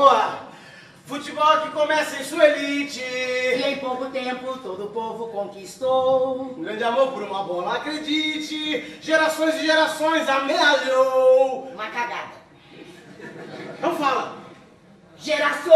Futebol que começa em sua elite. E em pouco tempo todo o povo conquistou. Um grande amor por uma bola, acredite. Gerações e gerações amealhou. Uma cagada. Não fala.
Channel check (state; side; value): identical; both; correlation 1.00